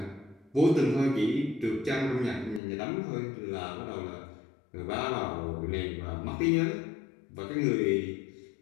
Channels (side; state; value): right; drops out; at 2.6 s